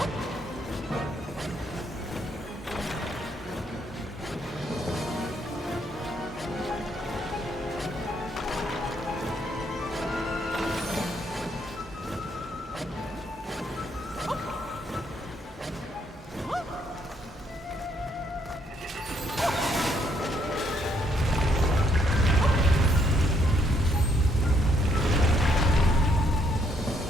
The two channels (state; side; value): normal; both; correlation 0.71